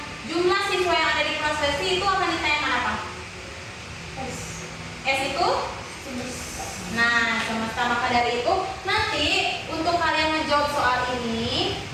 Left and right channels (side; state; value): both; identical; correlation 1.00